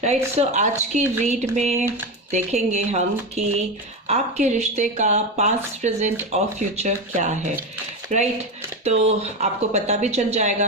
राइट, सो आज की रीड में देखेंगे हम कि आपके रिश्ते का पास्ट, प्रेजेंट और फ्यूचर क्या है। राइट, तो आपको पता भी चल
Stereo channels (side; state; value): both; normal; correlation 0.17